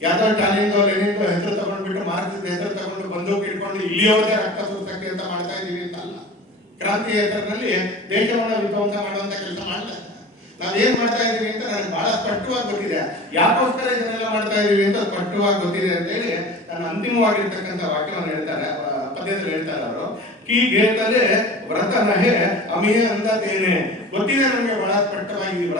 ಯಾವ್ದೋ ಟಾಲಿಂದೋ ಲೆನಿಂದೋ ಹೆಸರು ತಗೊಂಡ್ಬಿಟ್ಟು ಮಾರ್ಕ್ಸಿಸ್ಟ್ ಹೆಸರು ತಗೊಂಡು ಬಂದೂಕು ಇಟ್ಕೊಂಡು ಇಲ್ಲಿಯವರೆಗೆ ರಕ್ತ ಸುರಿಸಕ್ಕೆ ಅಂತ ಮಾಡ್ತಾ ಇದೀವಿ ಅಂತಲ್ಲ. ಕ್ರಾಂತಿ ಹೆಸರಿನಲ್ಲಿ ದೇಶವನ್ನು ವಿಧ್ವಂಸ ಮಾಡುವಂತ ಕೆಲಸ ಮಾಡಲ್ಲ. ನಾವೇನ್ ಮಾಡ್ತಾ ಇದೀವಿ ಅಂತ ನನಗೆ ಬಹಳ ಸ್ಪಷ್ಟವಾಗಿ ಗೊತ್ತಿದೆ. ಯಾಕೋಸ್ಕರ ಇದನ್ನೆಲ್ಲ ಮಾಡ್ತಾ ಇದೀವಿ ಅಂತ ಸ್ಪಷ್ಟವಾಗಿ ಗೊತ್ತಿದೆ ಅಂತ ಹೇಳಿ ನನ್ನ ಅಂತಿಮವಾಗಿರ್ತಕ್ಕಂಥ ವಾಕ್ಯವನ್ನು ಹೇಳ್ತಾರೆ, ಪದ್ಯದಲ್ಲಿ ಹೇಳ್ತಾರೆ ಅವರು. ಕೀ ಗೇತಲೆ ವ್ರತ ನಹೆ ಅಮಿಯ ಅಂದೇನೆ. ಗೊತ್ತಿದೆ ನಮಗೆ ಬಹಳ ಸ್ಪಷ್ಟವಾಗಿ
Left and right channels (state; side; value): normal; both; correlation 0.38